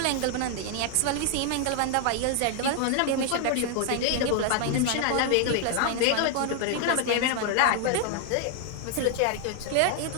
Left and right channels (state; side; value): different; both; correlation 0.00